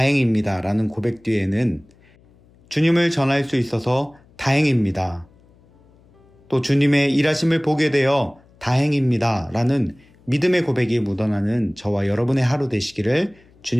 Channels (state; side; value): noise; left; hum, 29 dB below the sound